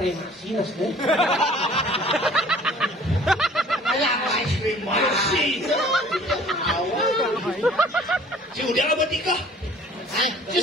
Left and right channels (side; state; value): both; normal; correlation 0.51